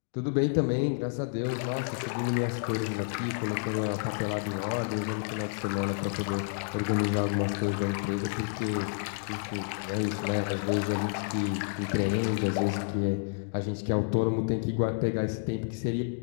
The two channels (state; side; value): silent; right; digital silence